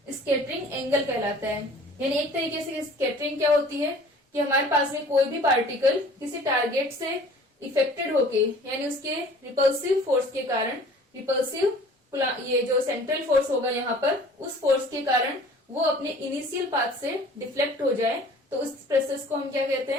स्कैटरिंग एंगल कहलाता है। यानी एक तरीके से स्कैटरिंग क्या होती है कि हमारे पास में कोई भी पार्टिकल किसी टारगेट से इफेक्टेड होके, यानी उसके रिपल्सिव फोर्स के कारण, रिपल्सिव ये जो सेंट्रल फोर्स होगा यहाँ पर, उस फोर्स के कारण वो अपने इनिशियल पाथ से डिफ्लेक्ट हो जाए, तो उस प्रोसेस को हम क्या कहते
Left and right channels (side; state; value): both; normal; correlation 0.48